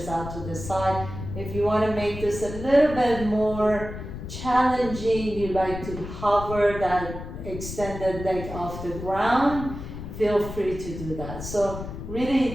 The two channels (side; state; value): left; noise; rumble, 9 dB below the sound